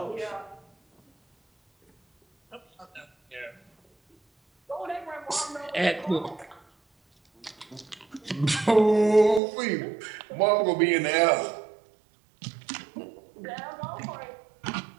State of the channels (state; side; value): drops out; left; at 9.4 s